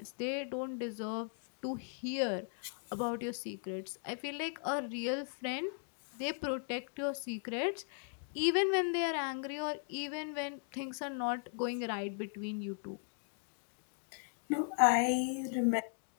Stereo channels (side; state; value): right; silent; 53 dB below the other